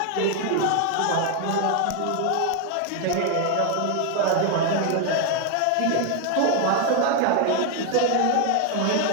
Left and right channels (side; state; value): both; different; correlation 0.01